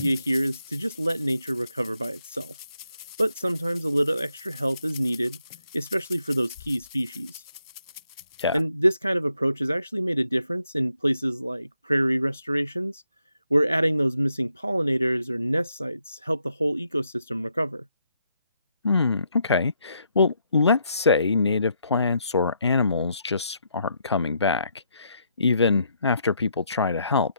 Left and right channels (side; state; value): both; inverted; correlation -0.77